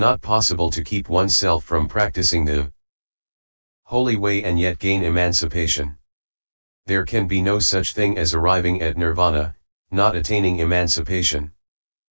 possible to keep oneself from practicing the holy way and yet gain emancipation. There can be no such thing as arriving at nirvana, not attaining emancipation.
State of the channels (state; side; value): inverted; both; correlation -1.00